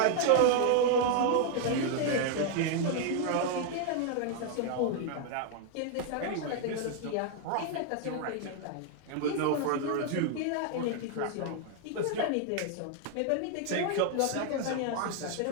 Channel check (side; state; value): both; different; correlation 0.00